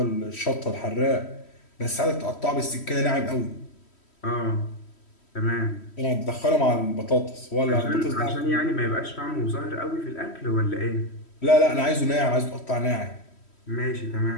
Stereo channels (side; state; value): right; late; 3.1 ms